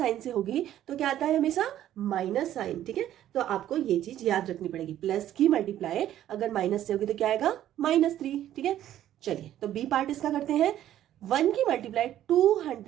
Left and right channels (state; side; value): quieter; left; 12.1 dB